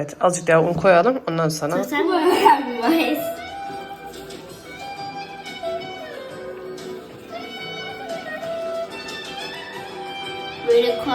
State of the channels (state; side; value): identical; both; correlation 1.00